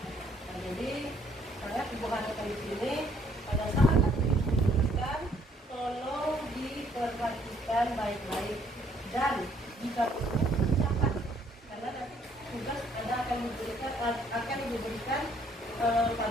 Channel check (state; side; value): normal; both; correlation 0.64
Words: Nah, jadi sangat Ibu harapkan di sini pada saat dijelaskan, tolong diperhatikan baik-baik dan jika perlu catat, karena nanti tugas Anda akan diberikan